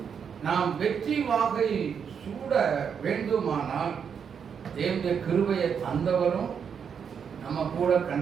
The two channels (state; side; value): quieter; left; 7.1 dB